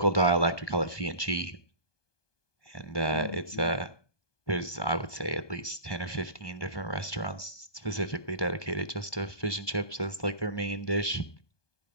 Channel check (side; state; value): right; late; 1.2 ms